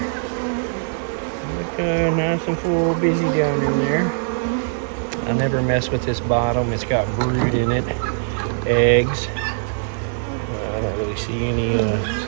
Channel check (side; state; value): left; silent; digital silence